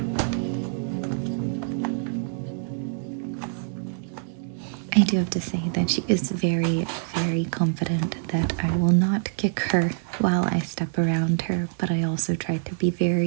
I do have to say that she is very, very confident that I will not kick her while I step around her, but I also try to be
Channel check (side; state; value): left; silent; digital silence